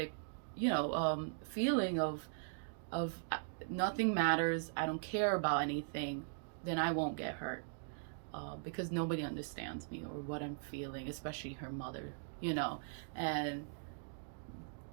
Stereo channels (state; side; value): silent; left; digital silence